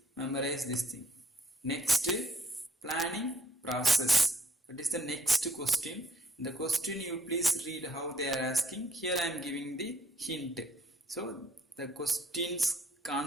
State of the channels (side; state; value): both; normal; correlation 0.65